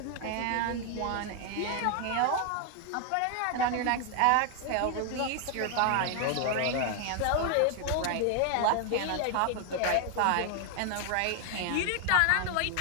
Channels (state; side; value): different; both; correlation 0.00